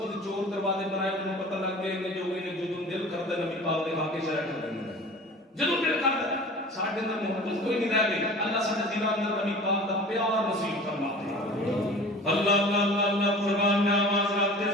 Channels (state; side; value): normal; both; correlation 0.40